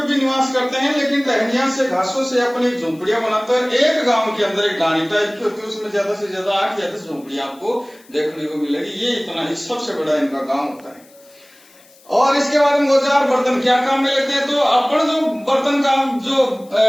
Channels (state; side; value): noise; left; hiss, 27 dB below the sound